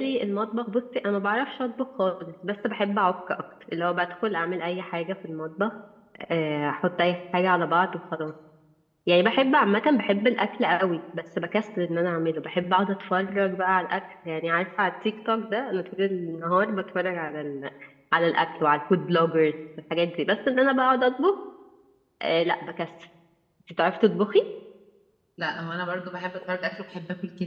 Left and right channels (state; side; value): identical; both; correlation 1.00